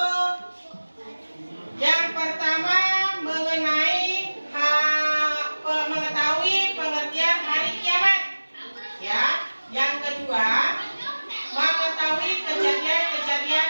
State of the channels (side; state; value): both; inverted; correlation -1.00